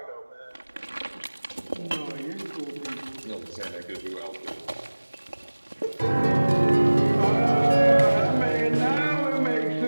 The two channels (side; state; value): both; inverted; correlation -1.00